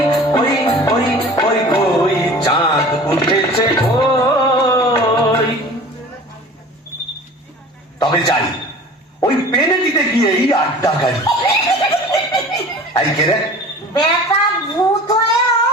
ওই ওই ওই ওই চাঁদ উঠেছে ওই। তবে যাই, ওই পেনেটিতে গিয়েই আড্ডা গাড়ি। এই কে রে? বেটা ভূত হয়েও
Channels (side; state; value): both; normal; correlation 0.41